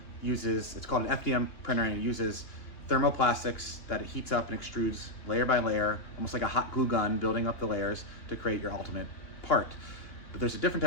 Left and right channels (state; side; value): late; right; 2.9 ms